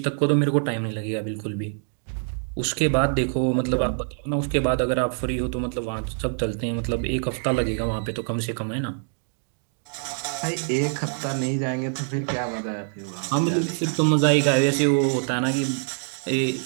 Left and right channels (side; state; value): left; silent; digital silence